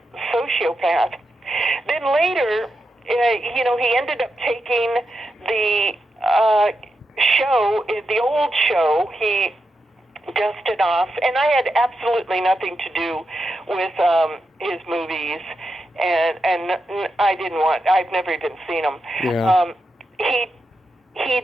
sociopath. Then later, he ended up taking the show, the old show, he dusted off. And I had absolutely nothing to do with his movies. And I didn't I've never even seen them. Yeah. He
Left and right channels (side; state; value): both; normal; correlation 0.86